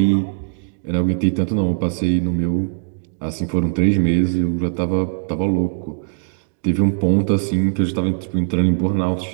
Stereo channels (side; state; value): left; silent; digital silence